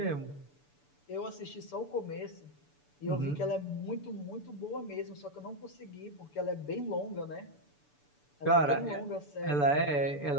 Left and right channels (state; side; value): late; right; 6.9 ms